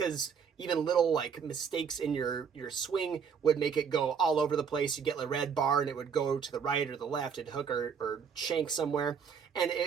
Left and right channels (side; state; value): left; quieter; 6.6 dB